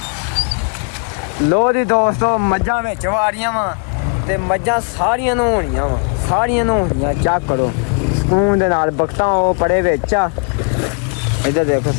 ਲੋ ਦੀ ਦੋਸਤੋ ਮੱਝਾਂ ਵਿੱਚ ਵਾੜੀਆਂ ਵਾ ਤੇ ਮੱਝਾਂ ਸਾਰੀਆਂ ਨਹਾਉਣੀਆਂ ਚੈੱਕ ਕਰੋ ਸਕੂਨ ਦੇ ਨਾਲ ਬਖਤਾਂ ਉਹ ਪੜੇ ਵਿੱਚ ਆ ਇੱਧਰ ਦੇਖੋ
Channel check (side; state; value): right; quieter; 38.0 dB